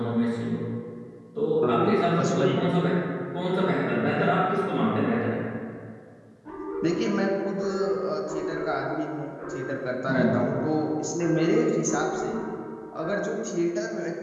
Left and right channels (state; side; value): identical; both; correlation 1.00